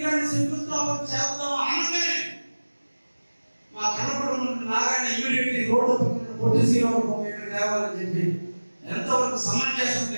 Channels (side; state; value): both; inverted; correlation -1.00